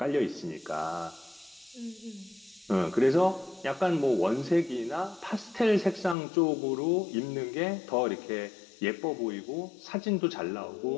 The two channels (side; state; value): right; drops out; at 6.2 s